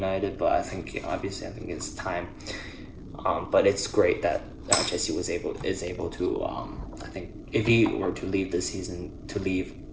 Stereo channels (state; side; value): identical; both; correlation 1.00